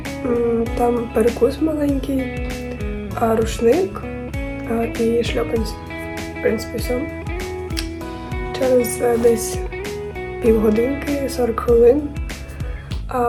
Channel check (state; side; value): identical; both; correlation 1.00